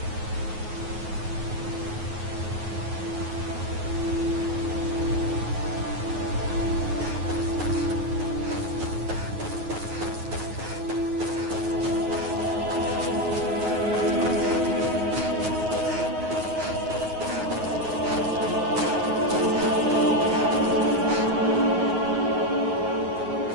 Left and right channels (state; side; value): late; left; 9.4 ms